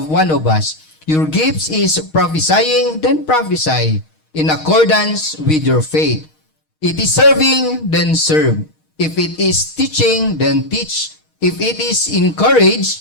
one of us. Your gifts is prophesying, then prophesy in accordance with your faith. It is serving, then serve. If it is teaching, then teach. If it is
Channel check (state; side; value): late; right; 6.4 ms